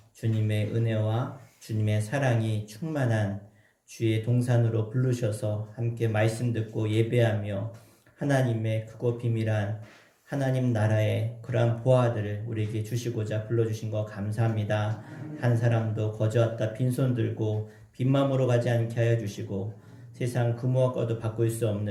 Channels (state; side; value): identical; both; correlation 1.00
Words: 주님의 은혜와 주님의 사랑이 충만한 주의 동산으로 부르셔서 함께 말씀 듣고 예배하며 하나님의 크고 비밀한 하나님 나라의 그러한 보화들을 우리에게 주시고자 불러주신 거 감사합니다. 한 사람도 거저왔다 빈손 들고 빈마음으로 가지 않게 하여 주시고 세상 그 무엇과도 바꿀 수